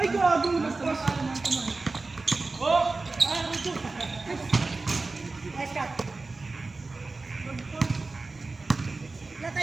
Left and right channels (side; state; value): left; quieter; 3.6 dB